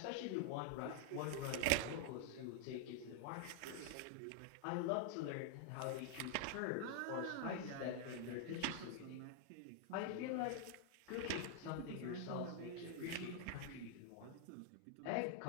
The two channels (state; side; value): different; both; correlation 0.00